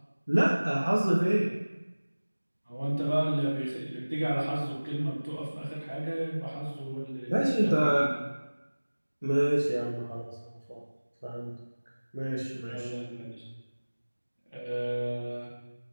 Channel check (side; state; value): both; inverted; correlation -1.00